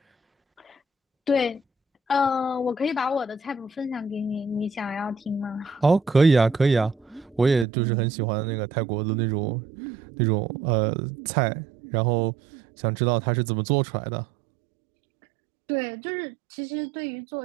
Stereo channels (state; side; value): drops out; left; at 7.7 s